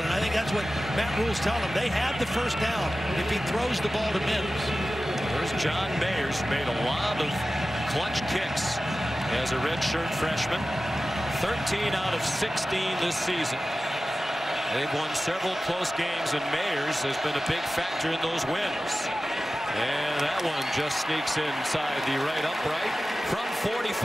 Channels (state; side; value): normal; both; correlation 0.95